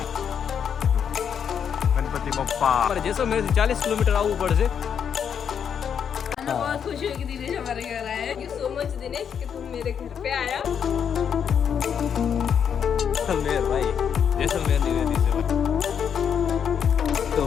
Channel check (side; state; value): right; quieter; 7.8 dB